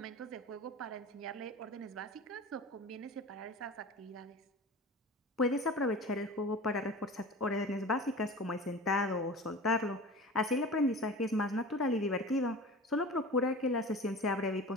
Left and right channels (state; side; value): normal; both; correlation 0.35